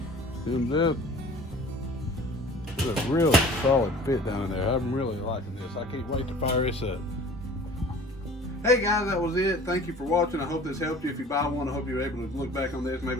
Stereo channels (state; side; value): normal; both; correlation 0.46